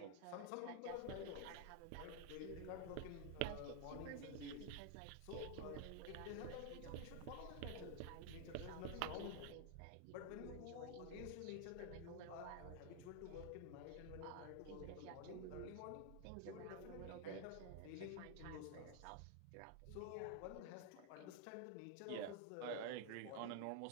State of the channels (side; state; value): both; different; correlation 0.00